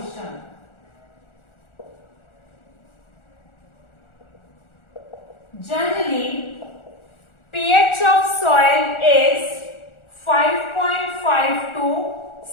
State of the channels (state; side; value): late; right; 1.4 ms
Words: Generally, pH of soil is 5.5 to